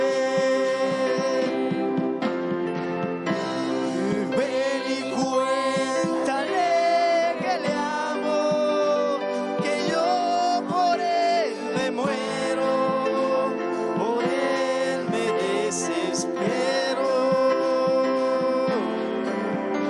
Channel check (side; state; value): both; identical; correlation 1.00